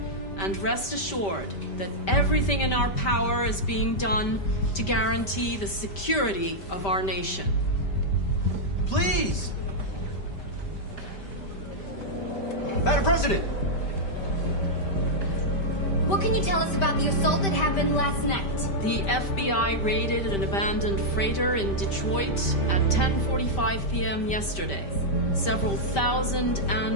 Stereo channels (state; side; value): late; right; 5.1 ms